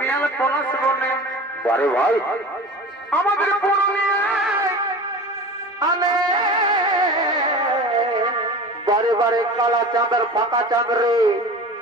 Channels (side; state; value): both; normal; correlation 0.35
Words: পলাশ বনে বারে ভাই আমাদের পুরুলিয়ায় আলে বারে বারে কালা চাঁদের ফাঁকা চাঁদ রে